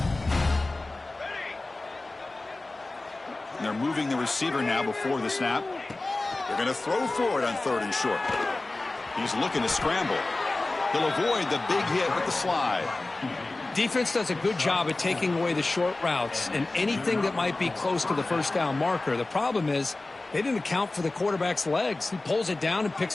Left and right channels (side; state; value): right; quieter; 3.1 dB